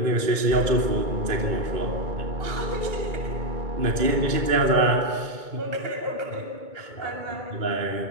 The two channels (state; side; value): late; left; 2.2 ms